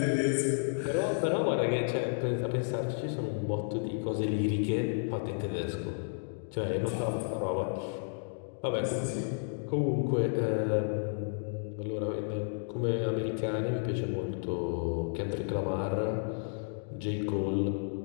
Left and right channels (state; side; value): silent; right; digital silence